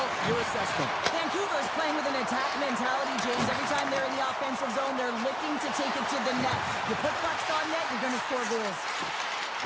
your assessment. Vancouver's playing with an attack mentality, James. Every time they're in the offensive zone, they're looking to take it to the net. You put pucks on net, you're going to score goals.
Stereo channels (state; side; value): identical; both; correlation 1.00